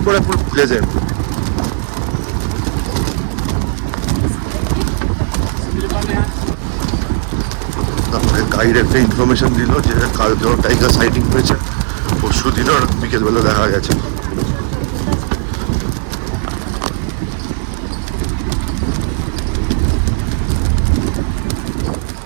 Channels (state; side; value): silent; left; 67 dB below the other